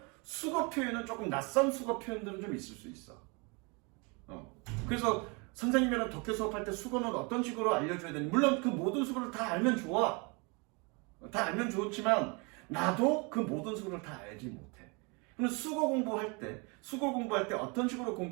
수거 표현은 조금 낯선 수거 표현들은 좀 있을 수 있어. 그래서 선생님이랑 독해 수업할 때 수거는 어떤 식으로 알려줘야 되는지 물론 그 모든 수거를 다 알면 좋아. 다 알면 좋지만 나도 그 모든 수거를 다 알지 못해. 그럼 수거 공부할 때 어떤 식으로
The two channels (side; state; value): left; quieter; 30.7 dB